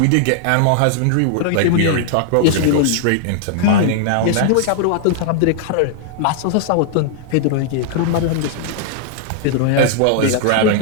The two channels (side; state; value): both; different; correlation -0.01